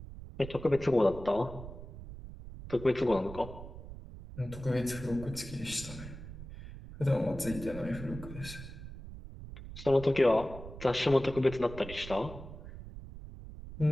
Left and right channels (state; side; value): noise; right; rumble, 12 dB below the sound